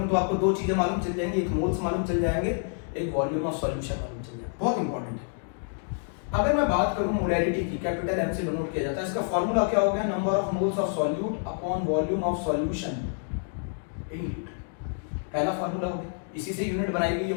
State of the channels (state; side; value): silent; right; 59 dB below the other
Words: तो आपको 2 चीजें मालूम चल जाएंगी, एक मोल्स मालूम चल जाएंगे, एक वॉल्यूम ऑफ सॉल्यूशन मालूम चल जाएगा। बहुत इंपॉर्टेंट है। अगर मैं बात करूं मोलैरिटी की, कैपिटल एम से डिनोट किया जाता है, इसका फार्मूला क्या हो गया, number of moles of solute upon volume of solution in litre. पहला फार्मूला हो गया, इसी से यूनिट बनाई गई है